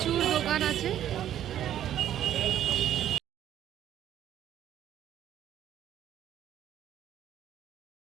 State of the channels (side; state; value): left; quieter; 11.1 dB